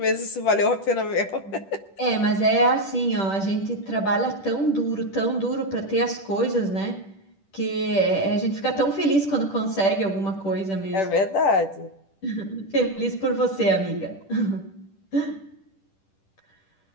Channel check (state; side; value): late; right; 10 ms